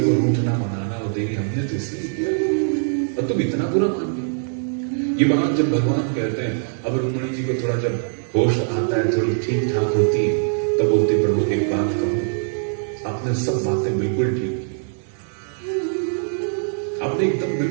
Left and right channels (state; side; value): silent; left; digital silence